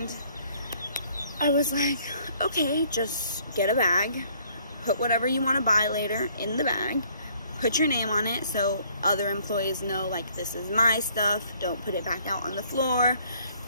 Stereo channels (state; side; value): inverted; both; correlation -0.62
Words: I was like, okay, just get a bag, put whatever you want to buy later in the bag, put your name on it so other employees know, like, this is my stuff, don't put it back out on the floor,